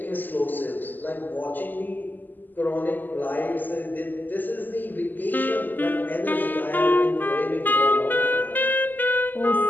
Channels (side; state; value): right; late; 0.087 ms